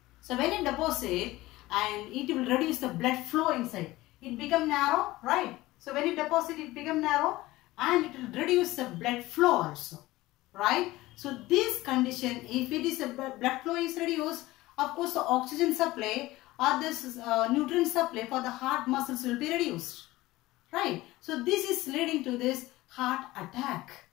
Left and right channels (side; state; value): right; quieter; 18.3 dB